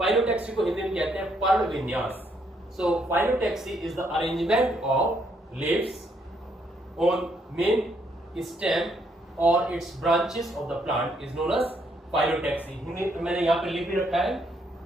को हिंदी में कहते हैं पर्ण विन्यास। So phyllotaxy is the arrangement of leaves on main stem or its branches of the plant is known as phyllotaxy। मैंने यहाँ पे लिख भी रखा है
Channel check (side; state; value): both; normal; correlation 0.72